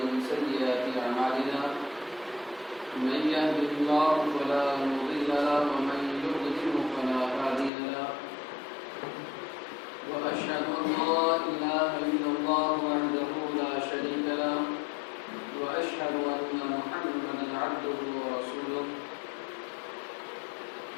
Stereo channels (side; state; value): right; drops out; at 7.7 s